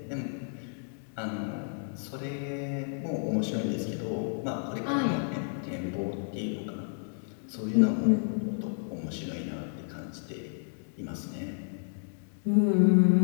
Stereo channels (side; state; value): right; silent; digital silence